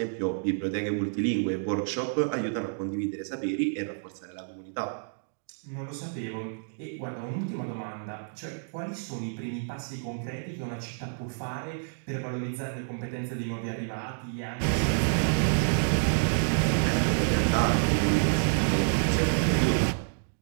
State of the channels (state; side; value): silent; left; digital silence